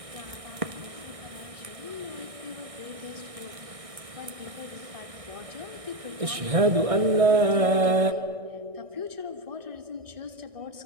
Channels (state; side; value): late; left; 1.6 ms